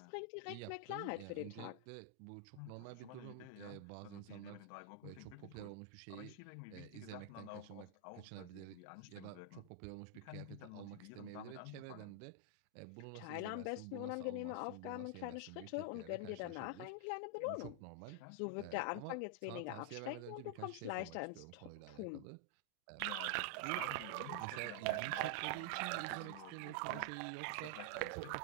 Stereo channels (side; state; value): both; different; correlation 0.00